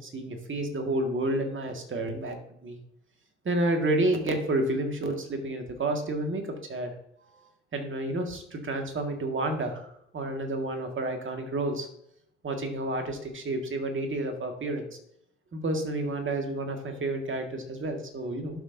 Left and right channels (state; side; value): normal; both; correlation 0.33